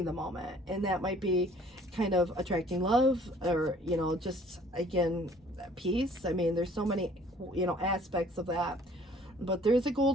the moment. And that might be kind of attracting love, or, you know, just, again, peace. I mean, there's so many, you know, aspects of that. But there's a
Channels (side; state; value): both; normal; correlation 0.55